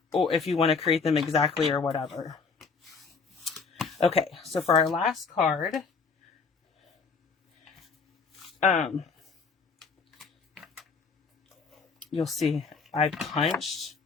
or if you want to create them exactly or whatever. Okay, so for our last card, you'll see I punched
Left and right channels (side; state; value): right; quieter; 5.0 dB